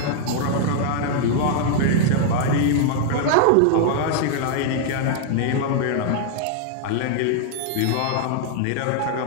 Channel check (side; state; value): both; different; correlation -0.01